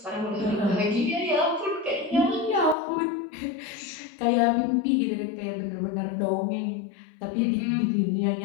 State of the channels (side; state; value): right; drops out; at 2.8 s